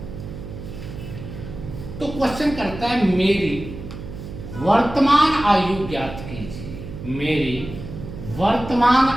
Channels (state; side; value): noise; right; hum, 11 dB below the sound